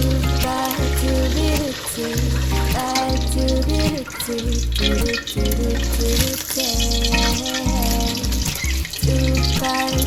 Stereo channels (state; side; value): identical; both; correlation 1.00